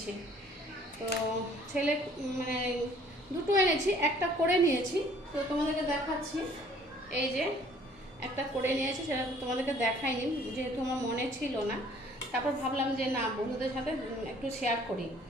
তো ছেলে মানে দুটো এনেছি, একটা করে নিয়েছি, তো তোমাদেরকে দেখাচ্ছি। এই যে একটা করে নিয়েছি, সেটা তোমাদেরকে দেখাইনি যেহেতু আমার মনে ছিল না। তারপর ভাবলাম যে না, বন্ধুদের সাথে একটু শেয়ার করি,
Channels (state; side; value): normal; both; correlation 0.56